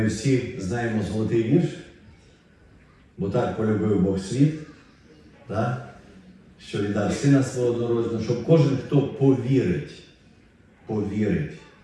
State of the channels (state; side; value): identical; both; correlation 1.00